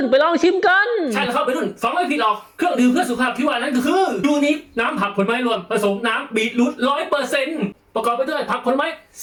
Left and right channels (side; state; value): both; identical; correlation 1.00